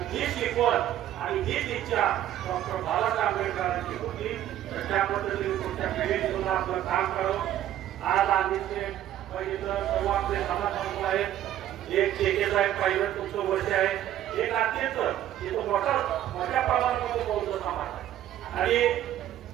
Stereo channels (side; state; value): left; quieter; 12.1 dB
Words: ही शिकवण आणि हीच इच्छा डॉक्टर बाबासाहेब आंबेडकरांची होती. तर त्या पद्धतीने पुढच्या पिढीने सुद्धा आपलं काम करावं. आज आम्ही बघितलं सर्व आपले समाज बांधव आहेत, एक ठेके साहेब पाहिलं तुमचं वर्ष आहे, एक अत्यंत इथं मोठ्या प्रमाणामध्ये बौद्ध समाज आहे आणि